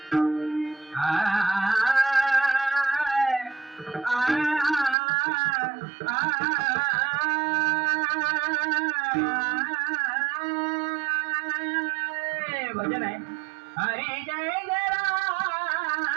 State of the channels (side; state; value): left; drops out; at 5.0 s